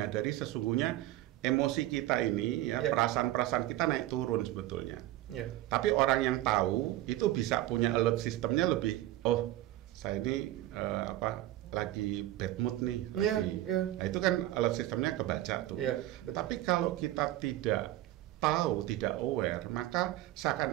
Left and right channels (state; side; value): quieter; left; 15.1 dB